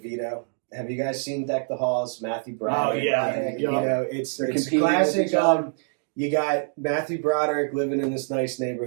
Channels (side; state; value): left; silent; digital silence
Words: have you guys seen Deck the Halls? Matthew Broderick. Oh, yeah. You know, it's They're competing classic. with each other. You got Matthew Broderick living in this nice